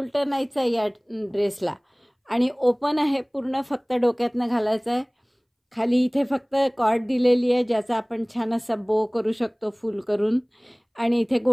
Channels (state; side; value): identical; both; correlation 1.00